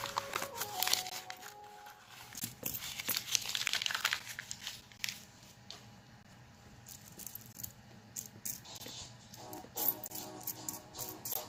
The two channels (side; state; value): both; identical; correlation 1.00